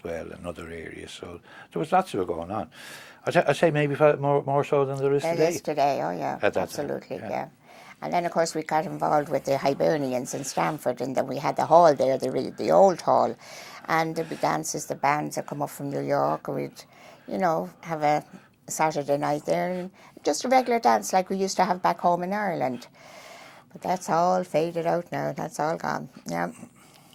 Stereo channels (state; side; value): identical; both; correlation 1.00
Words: well, and other areas. So there was lots of it going on. I'd say maybe more so than there is There today. is today, oh yeah, At that absolutely, time, yeah. And then, of course, we got involved with the Hibernians in Stamford, and then we had the hall there, the old hall. And there'd be dances, the bands that come up from New York, and we'd, have a Saturday night there, and just a regular dance like we used to have back home in Ireland. But that's all faded out now, that's all gone, yeah.